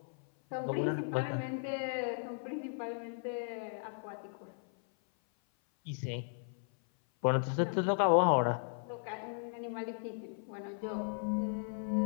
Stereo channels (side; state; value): right; silent; 54 dB below the other